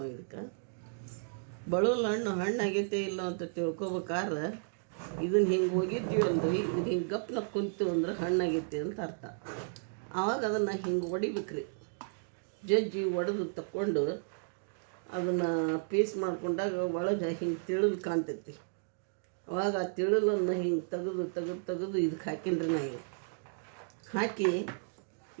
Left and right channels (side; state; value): left; silent; digital silence